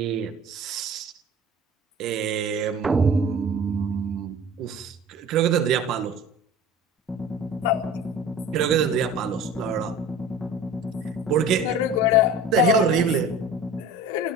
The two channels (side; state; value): both; normal; correlation 0.40